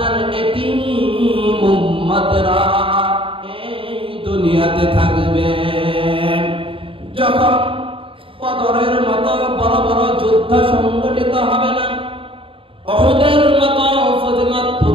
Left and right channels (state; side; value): late; left; 0.26 ms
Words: এতিম উম্মতেরা এই দুনিয়াতে থাকবে। যখন বদরের মতো বড় বড় যুদ্ধ সংগঠিত হবে না, উহুদের মতো